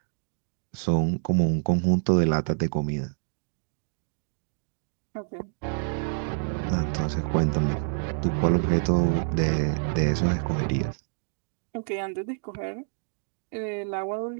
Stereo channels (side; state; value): left; silent; digital silence